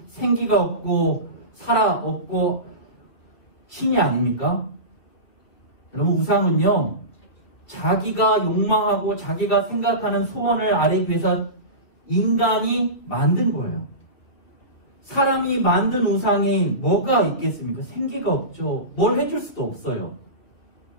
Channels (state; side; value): late; right; 2.4 ms